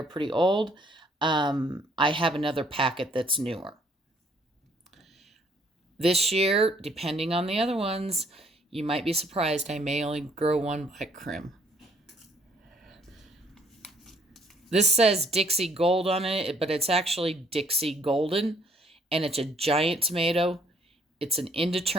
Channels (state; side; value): normal; both; correlation 0.64